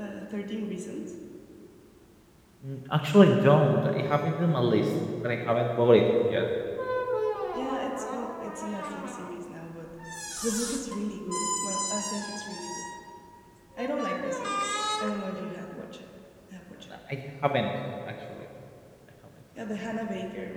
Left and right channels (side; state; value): both; identical; correlation 1.00